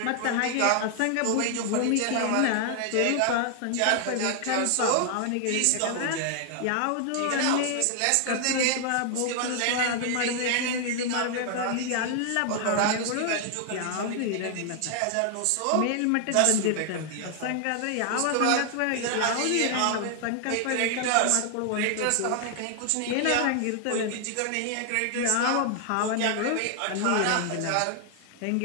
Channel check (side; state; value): both; different; correlation 0.00